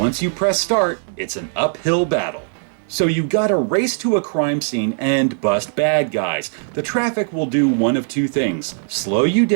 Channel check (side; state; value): left; silent; 66 dB below the other